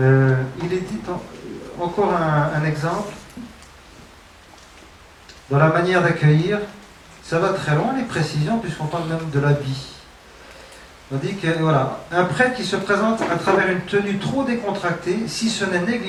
Il est dit encore un exemple. Dans la manière d'accueillir, ça va très loin les précisions puisqu'on parle même de l'habit. On dit que voilà, un prêtre qui se présente à travers une tenue trop décontractée, si ce n'est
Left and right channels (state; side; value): identical; both; correlation 1.00